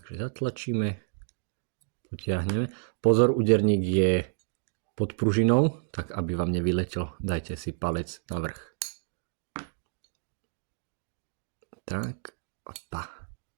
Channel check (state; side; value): silent; left; digital silence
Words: zatlačíme, potiahneme. Pozor, úderník je pod pružinou, tak aby vám nevyletel, dajte si palec na vrch. Tak, opa.